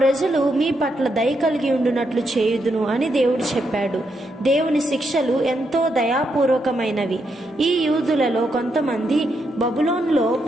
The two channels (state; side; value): normal; both; correlation 0.80